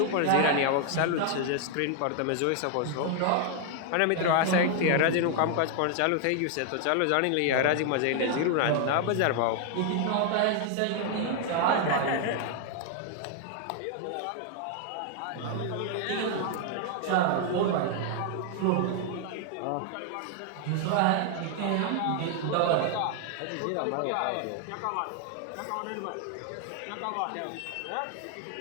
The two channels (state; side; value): different; both; correlation 0.00